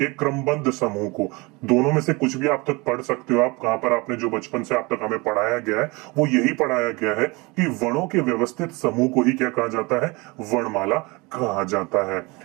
क्रमबद्ध समूह को, दोनों में से कुछ भी आप तक पढ़ सकते हो। आप कहां पर आपने जो बचपन से आप तक हमें पढ़ाया गया है वो यही पढ़ाया गया है कि वर्णों के व्यवस्थित समूह को ही क्या कहा जाता है? वर्णमाला कहा जाता है।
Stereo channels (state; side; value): quieter; left; 25.6 dB